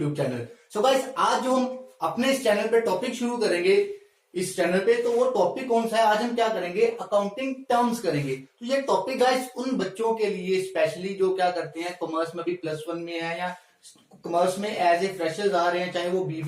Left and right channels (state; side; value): identical; both; correlation 1.00